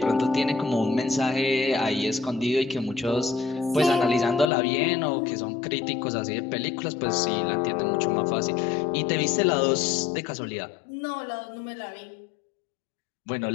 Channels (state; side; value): drops out; right; at 4.5 s